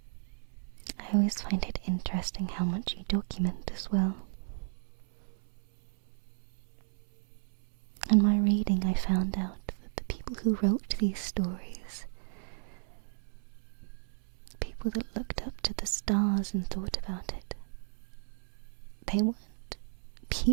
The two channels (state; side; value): silent; left; 55 dB below the other